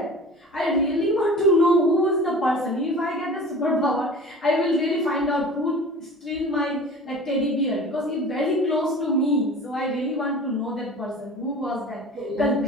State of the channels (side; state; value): both; normal; correlation 0.40